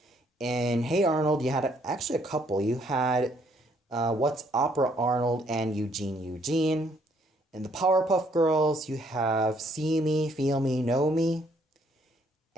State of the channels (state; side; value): normal; both; correlation 0.67